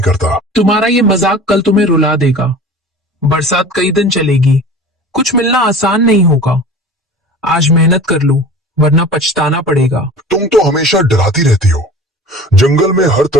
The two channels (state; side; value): normal; both; correlation 0.39